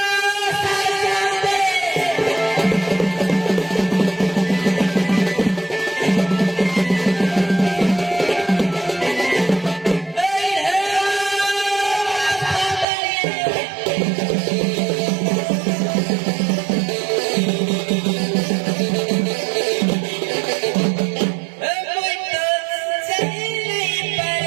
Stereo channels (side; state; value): left; drops out; at 12.9 s